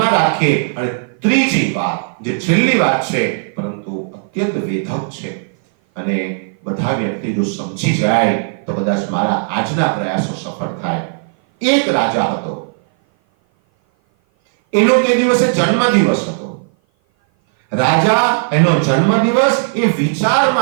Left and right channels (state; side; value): silent; left; 56 dB below the other